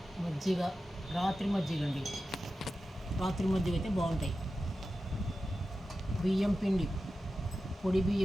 మజ్జిగ, రాత్రి మజ్జిగ అండి. రాత్రి మజ్జిగ అయితే బాగుంటాయి. బియ్యం పిండి, పొడి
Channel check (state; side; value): normal; both; correlation 0.92